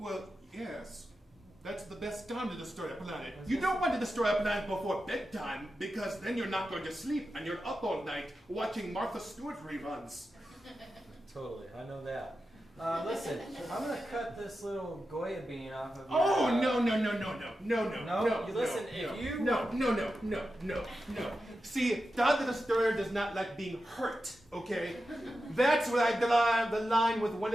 yes. That's the best time to destroy a planet. You don't want to destroy a planet before bedtime because then you're not going to sleep and you're up all night watching Martha Stewart reruns. Totally, I know that. Listen, I'm gonna cut this little Goya bean off of your... Oh, no. See, Todd the Destroyer does not like being hurt, okay? That's where I draw the line with one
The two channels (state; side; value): normal; both; correlation 0.91